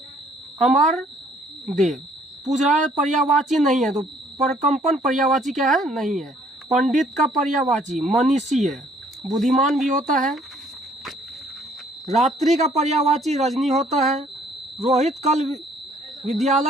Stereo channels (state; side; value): normal; both; correlation 0.61